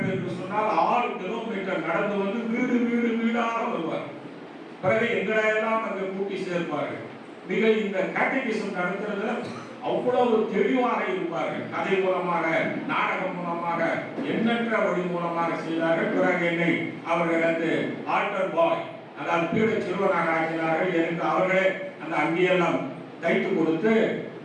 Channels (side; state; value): both; identical; correlation 1.00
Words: என்று சொன்னால் 6 கிலோமீட்டர் நடந்து வந்து வீடு வீடு வீடாக வருவார். பிறகு எங்களை எல்லாம் அங்கே கூட்டி சேர்ப்பார்கள். மிக இந்த கேட்டகிசம் நடத்துறதுல அவ்வளவு தெளிவாக இருப்பார்கள். கதை மூலமாக, நாடகம் மூலமாக, எண்ணற்ற வழி மூலமாக செய்தார்கள். பிறகு என்னை அவர்கள் வந்து ஆல்டர் பாய், அதாவது பீட சிறுவனாக ஆக்கினார்கள். எனக்கு அவர்களே அந்த அங்கேயெல்லாம் தைத்து கொடுத்து